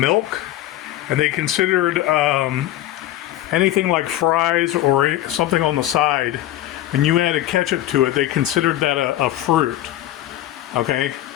and they considered anything like fries or something on the side, when you added ketchup to it, they considered that a fruit, okay?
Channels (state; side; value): quieter; right; 14.1 dB